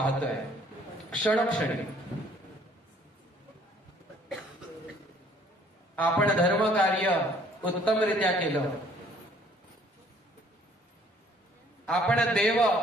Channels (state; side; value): normal; both; correlation 0.59